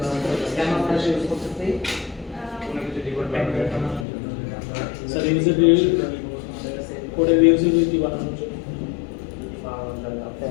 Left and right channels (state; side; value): drops out; right; at 4.0 s